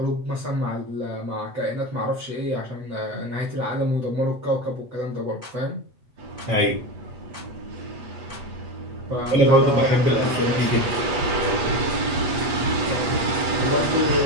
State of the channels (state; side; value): late; left; 8.3 ms